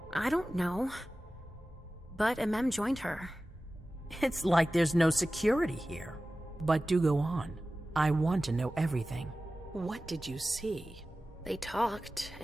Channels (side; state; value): both; normal; correlation 0.96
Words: I don't know, but Mem joined her. It's like there's no security here. But do go on. I want to know everything. What did you see? They talked,